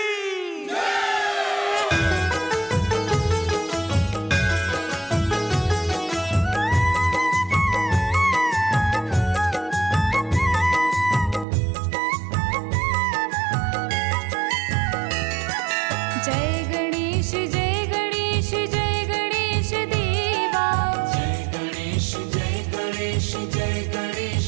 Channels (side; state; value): left; drops out; at 11.5 s